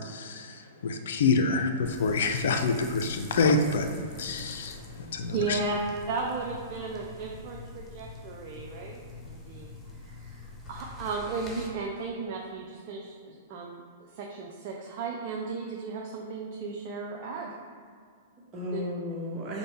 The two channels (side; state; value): both; inverted; correlation -0.35